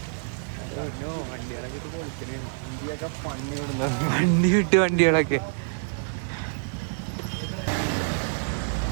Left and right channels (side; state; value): left; silent; digital silence